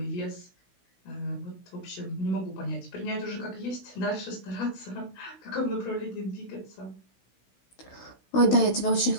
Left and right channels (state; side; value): late; right; 16 ms